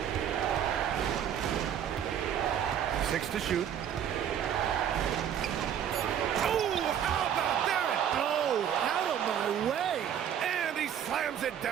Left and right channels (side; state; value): left; quieter; 9.3 dB